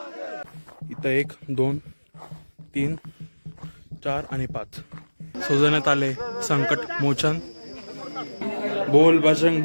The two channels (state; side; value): inverted; both; correlation -1.00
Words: इथं 1 2 3 4 आणि 5 सजवण्यात आले संकट मोचन। बोल बजरंग